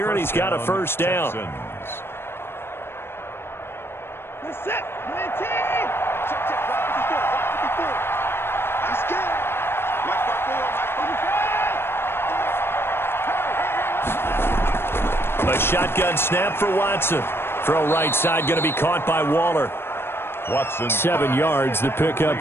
and he's got a first down. A shotgun snap for Watson. Throw right side going to be caught by Waller. Watson. 7 yards, the pick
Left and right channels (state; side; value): late; right; 0.11 ms